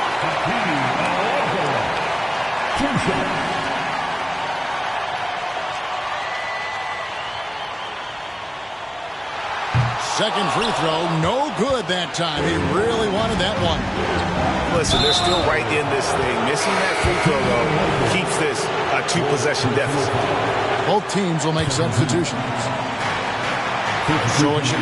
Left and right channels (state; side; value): identical; both; correlation 1.00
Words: Second free throw, no good that time. He really wanted that one. Listen, they're still right in this thing. Missing that free throw, though, keeps this a 2-possession deficit. Both teams will make substitutions. So it's